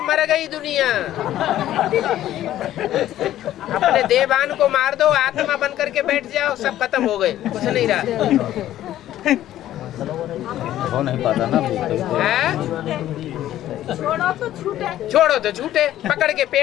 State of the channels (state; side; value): quieter; right; 12.9 dB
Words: मर गई दुनिया। अपने देवान को मार दो, आत्मा बन करके बैठ जाओ, सब खत्म हो गए, कुछ नहीं रहा। हो नहीं पाता ना। छोड़ो तो छूटे, पकड़ के